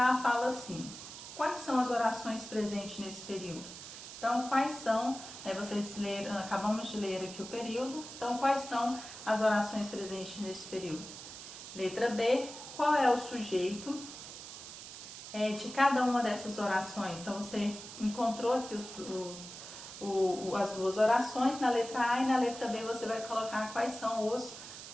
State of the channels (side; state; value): right; noise; hiss, 12 dB below the sound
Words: fala assim: quais são as orações presentes nesse período? Então, quais são, vocês leram, acabamos de ler aqui o período, então quais são as orações presentes nesse período? Letra B, qual é o sujeito de cada uma dessas orações? Então, você encontrou aqui as duas orações, na letra A e na letra B você vai colocar quais são os